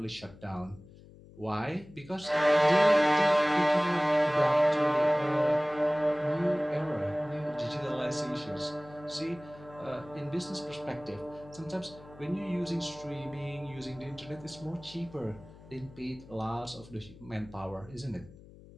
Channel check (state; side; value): noise; left; hum, 21 dB below the sound